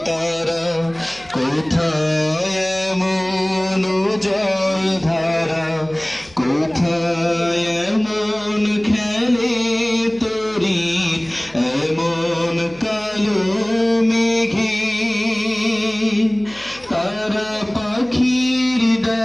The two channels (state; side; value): noise; left; hum, 25 dB below the sound